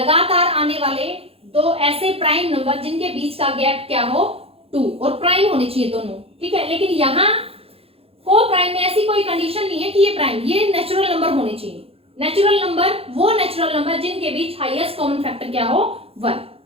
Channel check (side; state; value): left; late; 0.28 ms